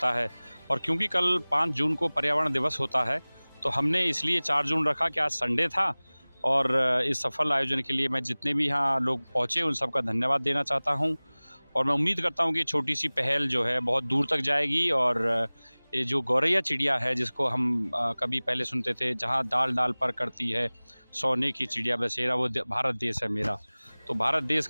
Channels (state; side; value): inverted; both; correlation -1.00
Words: है। और क्योंकि कल 5 जून को पर्यावरण दिवस होता है, तो हमने इसलिए 4 जून रखा कि आज संडे था। और इस सफल आयोजन के लिए मैं जितने भी यहाँ लोग पहुँचे उन सबका धन्यवाद देना चाहता हूँ। और मैं उम्मीद करता हूँ कि छोटी सी पहल जो है बहुत दूर तक जाएगी। और ये जो गौरैया चिड़िया है, जिसको हम कभी पहले सुनते थे, जहाँ डाल डाल पर करती है सोने की चिड़िया बसेरा, वो भारत देश है मेरा। तो भारत देश